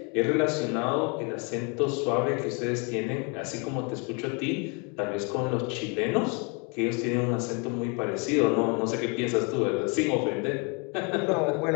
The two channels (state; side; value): quieter; right; 33.5 dB